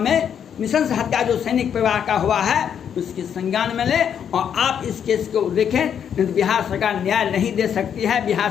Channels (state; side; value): quieter; right; 8.4 dB